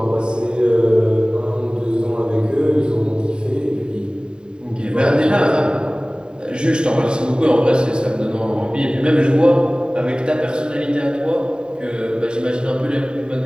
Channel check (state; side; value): late; left; 0.049 ms